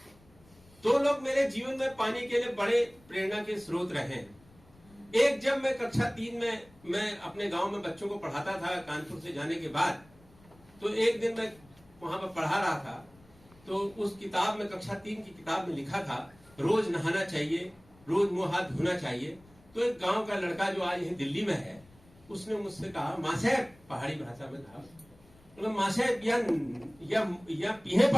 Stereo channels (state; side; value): noise; left; rumble, 27 dB below the sound